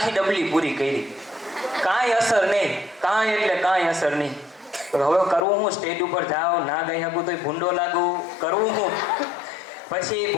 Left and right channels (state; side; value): drops out; right; at 5.5 s